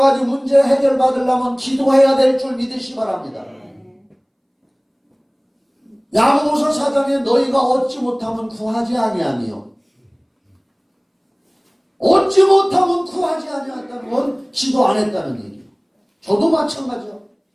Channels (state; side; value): identical; both; correlation 1.00